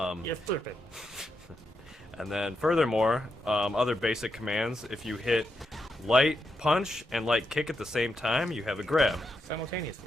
stupid. And then furthermore, other basic commands, if you hit light punch and light kick at the same time, you have a grab.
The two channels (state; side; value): normal; both; correlation 0.84